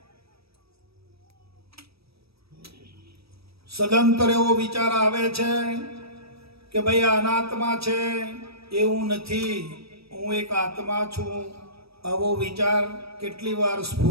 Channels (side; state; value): left; late; 0.77 ms